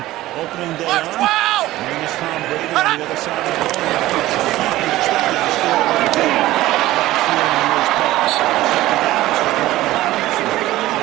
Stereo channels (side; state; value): left; quieter; 16.3 dB